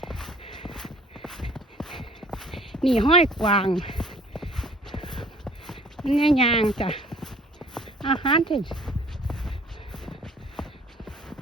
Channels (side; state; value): both; normal; correlation 0.54